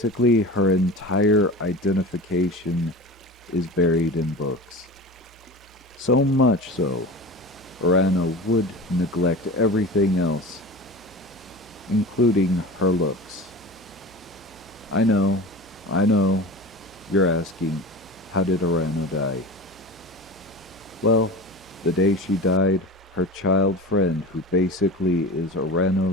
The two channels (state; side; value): normal; both; correlation 0.33